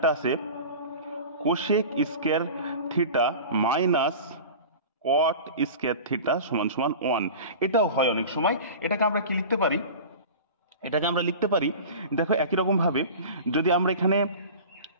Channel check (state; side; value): inverted; both; correlation -0.36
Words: আছে cosec square theta minus cot square theta সমান সমান 1। এটাও হয় অনেক সময়। এটাকে আমরা কি লিখতে পারি? এটাকে আমরা লিখতে পারি, দেখো একই রকম ভাবে যদি আমরা এখানে